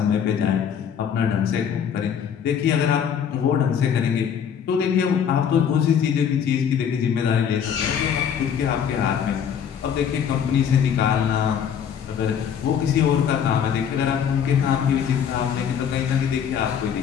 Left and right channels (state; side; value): quieter; right; 8.1 dB